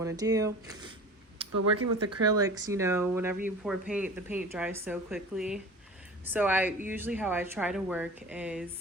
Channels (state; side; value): normal; both; correlation 0.38